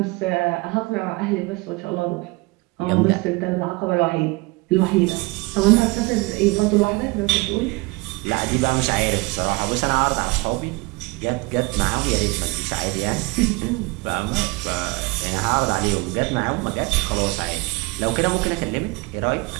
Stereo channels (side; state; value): left; quieter; 25.0 dB